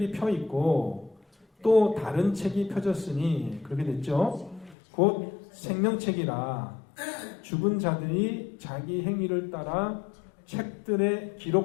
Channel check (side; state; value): right; drops out; at 4.8 s